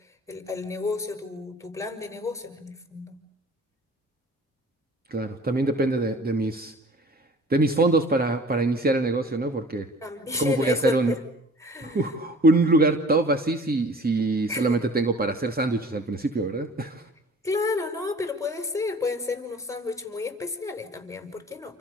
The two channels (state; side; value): normal; both; correlation 0.47